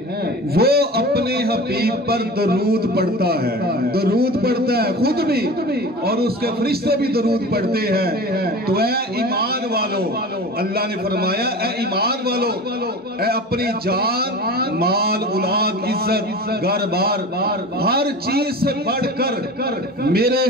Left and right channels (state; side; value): normal; both; correlation 0.35